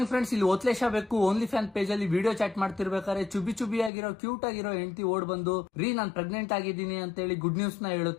Friends, ಇಲ್ಲಿ ಓತ್ಲೇಶ ಬೇಕು only fan page ಅಲ್ಲಿ ವಿಡಿಯೋ ಚಾಟ್ ಮಾಡ್ತಿರ್ಬೇಕಾದ್ರೆ ಚುಬಿ ಆಗಿರೋ ಕ್ಯೂಟ್ ಆಗಿರೋ ಹೆಂಡತಿ ಓಡ್ ಬಂದು ನಾನ್ ಪ್ರೆಗ್ನೆಂಟ್ ಆಗಿದ್ದೀನಿ ಅಂತ ಹೇಳಿ ಗುಡ್ ನ್ಯೂಸ್ ನ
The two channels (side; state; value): right; drops out; at 3.9 s